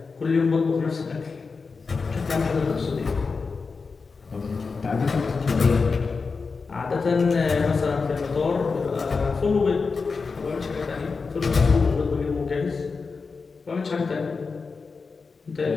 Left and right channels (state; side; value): quieter; right; 4.7 dB